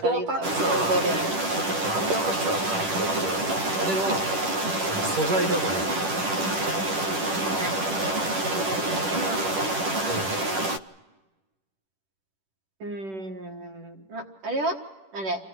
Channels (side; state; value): left; late; 10 ms